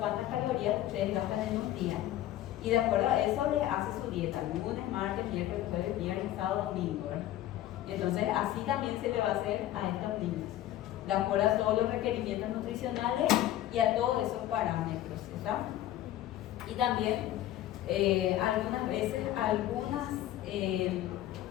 calorías ustedes gastan en un día. Y de acuerdo a eso les hace su dieta: lunes, martes, miércoles, jueves, viernes, sábado, domingo, ¿verdad? Entonces, así también se le va a hacer a estos niños, de acuerdo a todos los requerimientos nutricionales y a todos esos parámetros, ¿está? Y también algunas veces algunos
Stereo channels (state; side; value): quieter; right; 13.4 dB